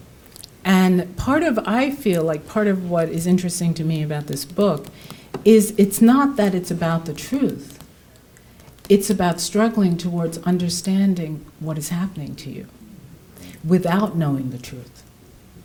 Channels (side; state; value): both; identical; correlation 1.00